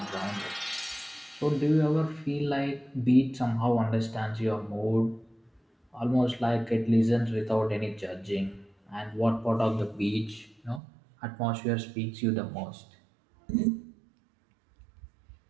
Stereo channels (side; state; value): left; drops out; at 10.8 s